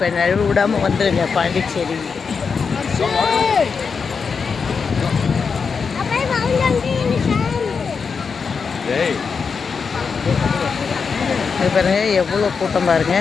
நழுவு விடாமல் வந்துடுங்க பாண்டிச்சேரி. இது பாருங்க எவ்வளோ கூட்டம் பாருங்க.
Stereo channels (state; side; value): quieter; right; 5.5 dB